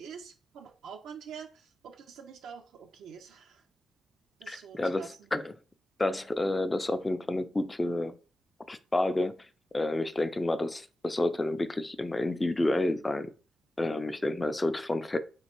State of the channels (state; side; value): normal; both; correlation 0.95